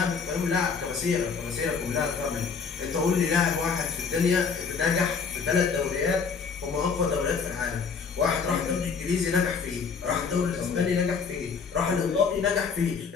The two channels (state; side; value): quieter; right; 5.6 dB